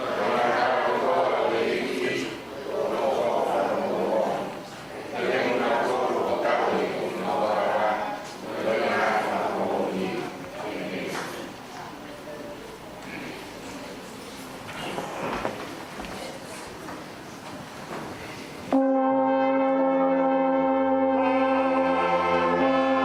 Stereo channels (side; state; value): both; identical; correlation 1.00